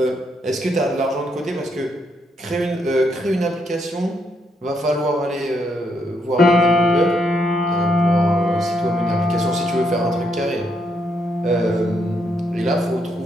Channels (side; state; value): both; normal; correlation 0.76